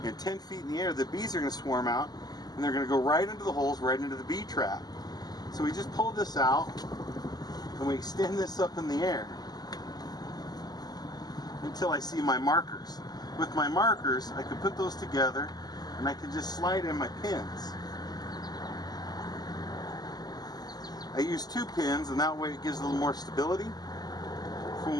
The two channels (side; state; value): right; late; 0.20 ms